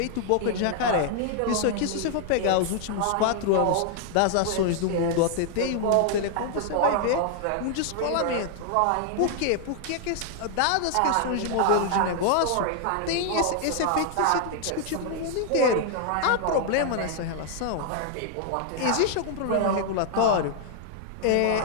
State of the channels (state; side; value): different; both; correlation 0.00